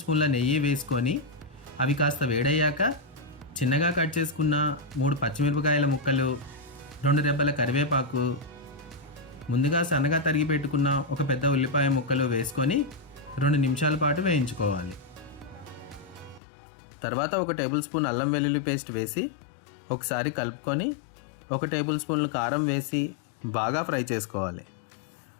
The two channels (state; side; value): drops out; right; at 16.4 s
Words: స్పూన్ల నెయ్యి వేసుకొని అవి కాస్త వేడయ్యాక చిన్నగా కట్ చేసుకున్న 3 పచ్చిమిరపకాయల ముక్కలు, 2 రెబ్బల కరివేపాకు, ముందుగా సన్నగా తరిగి పెట్టుకున్న ఒక పెద్ద ఉల్లిపాయ ముక్కలు వేసుకొని 2 నిమిషాల పాటు వేయించుకోవాలి. తర్వాత 1 టేబుల్ స్పూన్ అల్లం వెల్లుల్లి పేస్ట్ వేసి ఒకసారి కలుపుకొని 1 టేబుల్ స్పూన్లు కారం వేసి బాగా ఫ్రై చేసుకోవాలి.